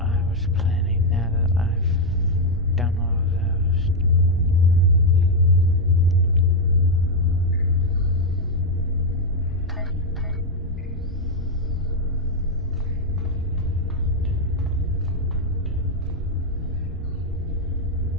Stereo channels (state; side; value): normal; both; correlation 0.01